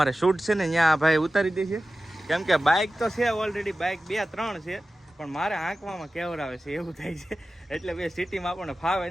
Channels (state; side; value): normal; both; correlation 0.95